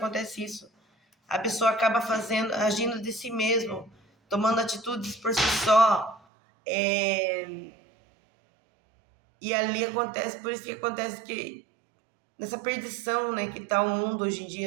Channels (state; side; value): drops out; left; at 6.2 s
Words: isso. A pessoa acaba agindo de si mesmo, tomando atitudes por si só. E ali acontece, por isso que acontece que nessa perdição, né, que está o mundo hoje em